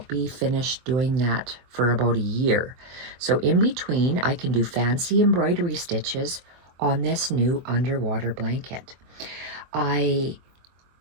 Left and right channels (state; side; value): late; left; 23 ms